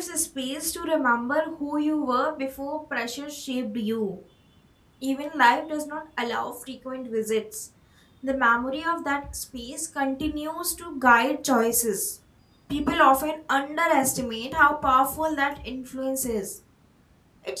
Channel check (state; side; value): identical; both; correlation 1.00